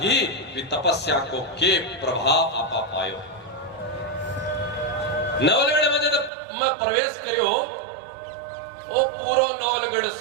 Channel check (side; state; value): left; drops out; at 6.3 s